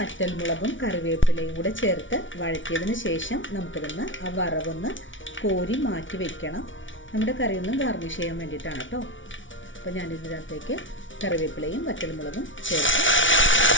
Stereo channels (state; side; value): late; right; 0.56 ms